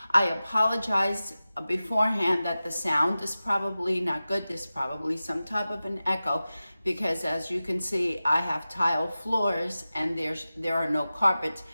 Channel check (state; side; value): inverted; both; correlation -0.95